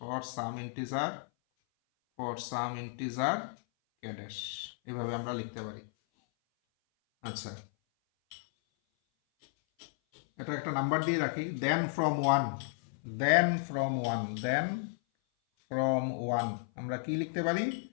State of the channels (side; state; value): right; silent; 56 dB below the other